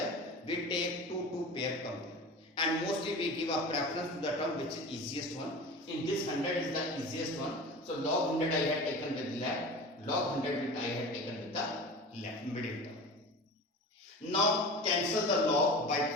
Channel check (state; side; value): normal; both; correlation 0.34